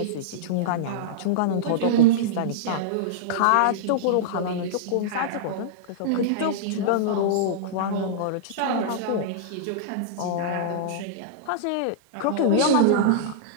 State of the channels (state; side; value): different; both; correlation -0.02